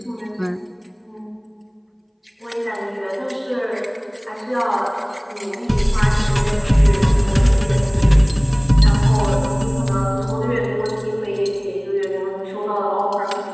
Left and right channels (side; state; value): both; identical; correlation 1.00